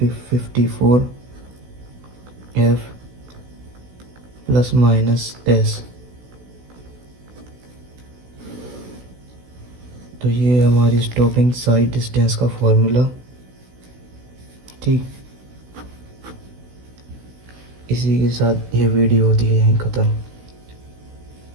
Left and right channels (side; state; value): left; late; 16 ms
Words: F plus minus S. तो ये हमारी स्टॉपिंग साइड डिस्टेंस का formula. ठीक, इसी के साथ ये वीडियो होती है यहीं ख़त्म।